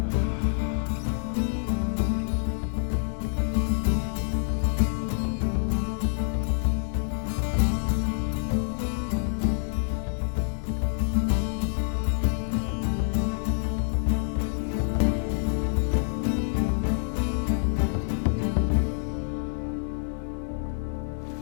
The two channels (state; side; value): silent; right; digital silence